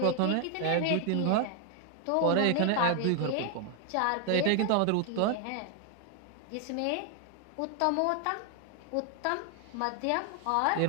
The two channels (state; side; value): different; both; correlation 0.00